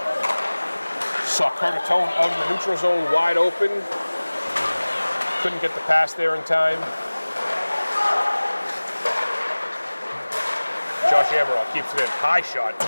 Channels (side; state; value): both; inverted; correlation -1.00